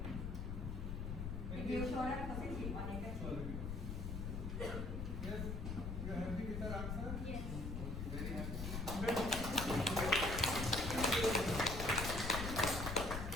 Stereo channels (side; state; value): left; noise; rumble, 4 dB below the sound